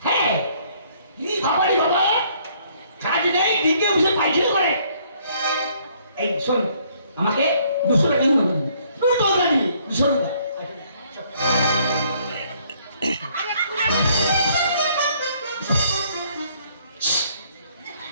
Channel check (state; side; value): inverted; both; correlation -0.64